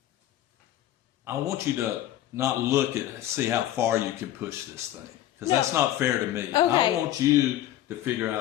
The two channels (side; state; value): right; quieter; 13.1 dB